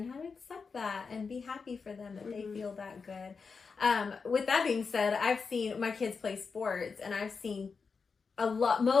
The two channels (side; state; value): right; quieter; 5.1 dB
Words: how to accept that and be happy for them that they feel that good. With that being said, I've seen my kids play sports, and I've seen